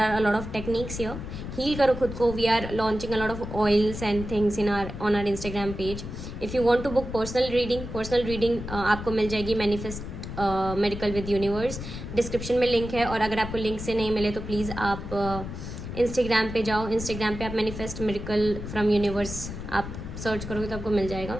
a lot of techniques here. Heal करो खुद को. We are launching a lot of oils and things on our Instagram page. If you want to book personal reading आपको मिल जाएगी Manifest Miracle with Universe. Description में लिंक है, और अगर आपको लिंक से नहीं मिले तो प्लीज़ आप इंस्टाग्राम पे जाओ. इंस्टाग्राम पे आप Manifest Miracle from Universe आप सर्च करोगे तो आपको मिल जाएगा.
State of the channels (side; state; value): left; noise; rumble, 8 dB below the sound